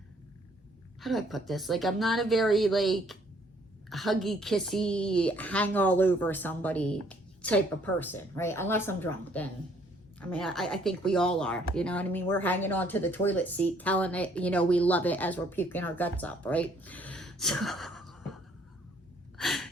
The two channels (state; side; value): normal; both; correlation 0.63